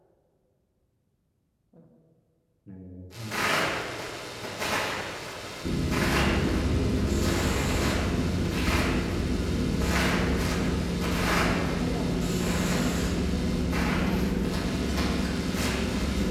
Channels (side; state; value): both; identical; correlation 1.00